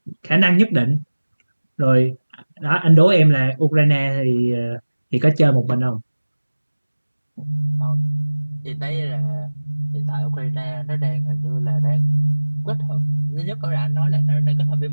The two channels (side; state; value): both; inverted; correlation -1.00